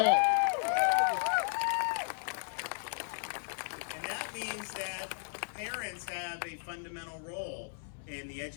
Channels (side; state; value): right; silent; 55 dB below the other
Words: And that means that parents have a fundamental role in the